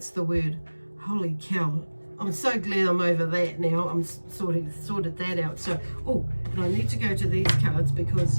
the word. Holy cow. I'm so glad I'm over that now. I'm sorted that out. So, oh, and I need to go to these cards because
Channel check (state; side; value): inverted; both; correlation -1.00